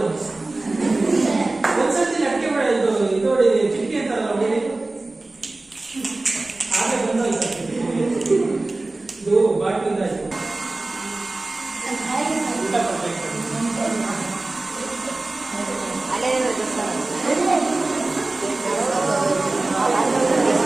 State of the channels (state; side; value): quieter; left; 3.1 dB